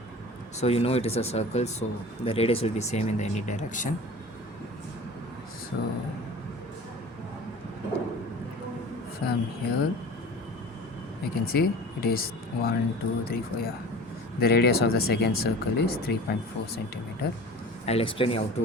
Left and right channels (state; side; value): normal; both; correlation 0.40